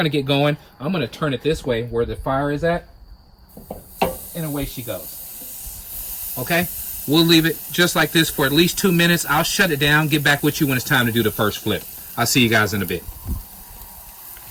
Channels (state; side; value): identical; both; correlation 1.00